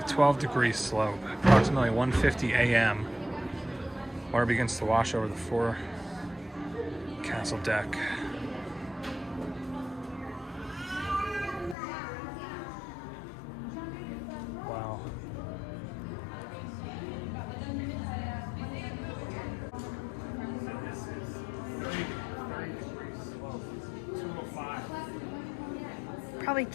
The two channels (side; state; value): right; drops out; at 11.8 s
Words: 12 degree slope, approximately 1:50 a.m. Water begins to wash over the forecastle deck. Wow. This is 30 degree slope, 205. probably